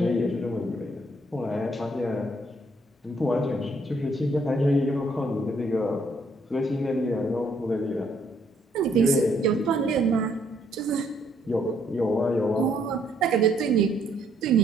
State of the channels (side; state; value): both; normal; correlation 0.68